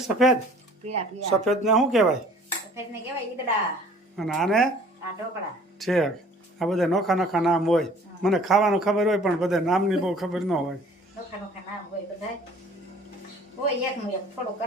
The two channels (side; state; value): both; normal; correlation 0.52